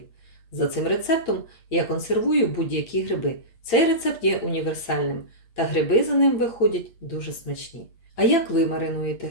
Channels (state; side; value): late; right; 8.5 ms